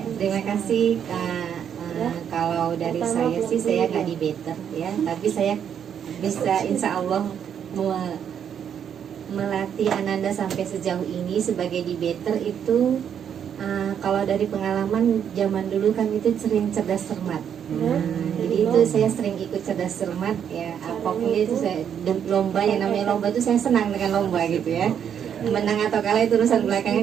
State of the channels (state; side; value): quieter; left; 8.5 dB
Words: terima kasih Kak. Kalau dari saya sih saya nggak debater ya, tapi saya bisa insya Allah melatih Ananda sampai sejauh ini sebagai debater itu. Kalau dari pengalaman zaman dulu kan itu sering cerdas cermat. Jadi itu saya sering ikut cerdas cermat ya. Apapun itu saya lomba, yang namanya lomba itu saya senang dengan lomba gitu ya. Menang atau kalah itu urusan belakangan,